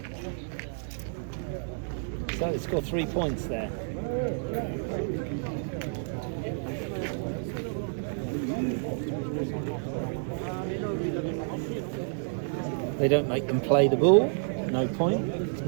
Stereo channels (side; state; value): left; silent; digital silence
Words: So they score 3 points there. They don't make them play the ball, no point. It's